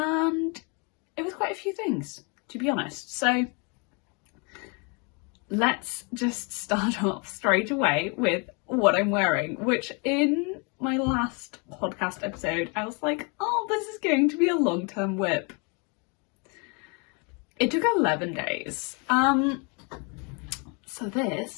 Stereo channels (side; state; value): right; quieter; 33.2 dB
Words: it was quite a few things, to be honest. So let's just start off straight away with what I'm wearing, which in my last podcast episode I was like, oh, this is going to be a long-term whip. It took 11 days. So